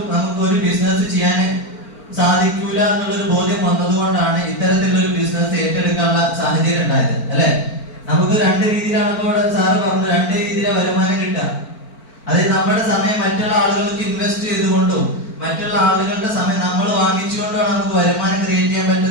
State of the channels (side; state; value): right; late; 4.4 ms